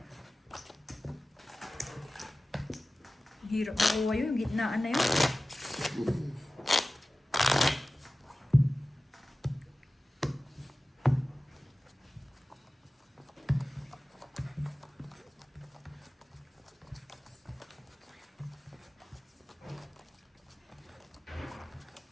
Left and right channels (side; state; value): both; normal; correlation 0.96